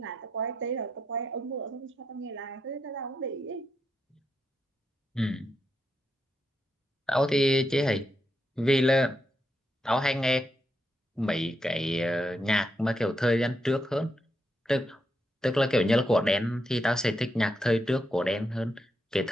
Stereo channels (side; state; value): both; normal; correlation 0.83